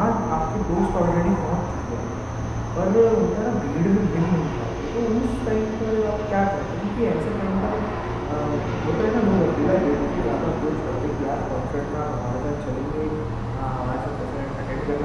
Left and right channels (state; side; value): identical; both; correlation 1.00